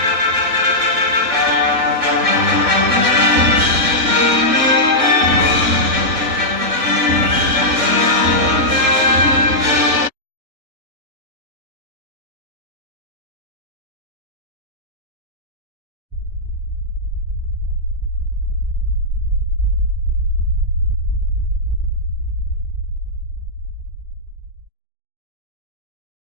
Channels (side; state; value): left; late; 3.5 ms